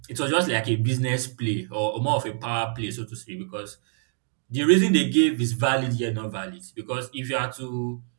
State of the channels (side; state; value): left; silent; 61 dB below the other